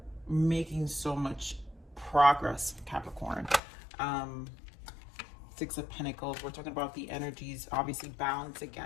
making so much progress, Capricorn. 6 of Pentacles, we're talking about the energies, obviously balance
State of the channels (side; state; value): right; drops out; at 3.6 s